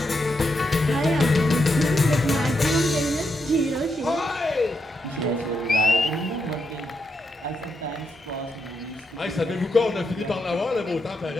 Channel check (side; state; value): both; normal; correlation 0.82